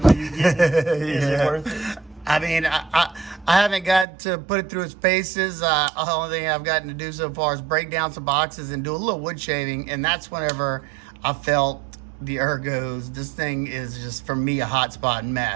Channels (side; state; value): left; drops out; at 4.0 s